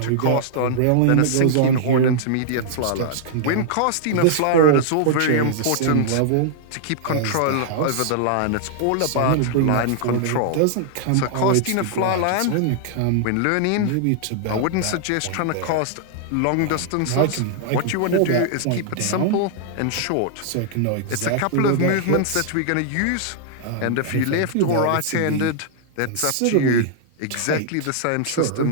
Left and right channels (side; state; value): both; different; correlation -0.01